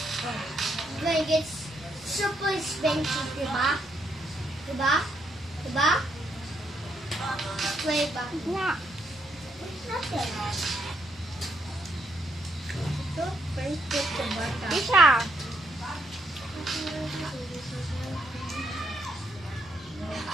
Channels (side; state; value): both; normal; correlation 0.75